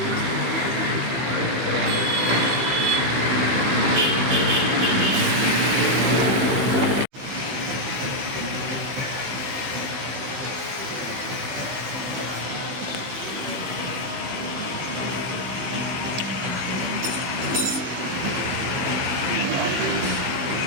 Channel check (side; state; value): left; late; 15 ms